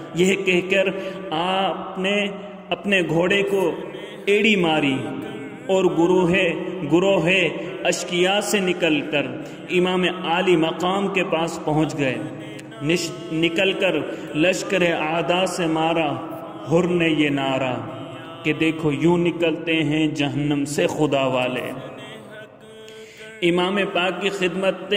یہ کہہ کر آپ نے اپنے گھوڑے کو ایڑی ماری اور گروہ اشقیاء سے نکل کر امام عالی مقام کے پاس پہنچ گئے۔ نکل کر لشکر اعداء سے مارا حر نے یہ نعرہ کہ دیکھو یوں نکلتے ہیں جہنم سے خدا والے۔ امام پاک کی خدمت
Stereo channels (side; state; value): both; identical; correlation 1.00